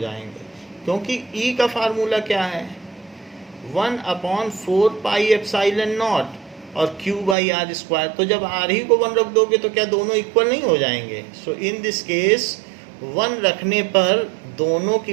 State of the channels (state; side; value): drops out; left; at 7.4 s